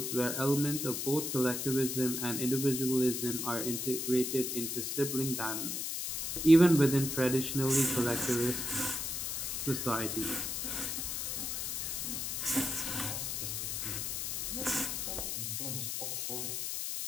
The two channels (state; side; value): noise; left; hiss, 2 dB below the sound